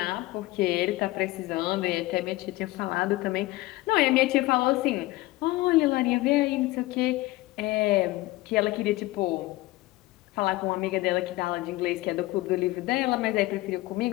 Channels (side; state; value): right; quieter; 19.3 dB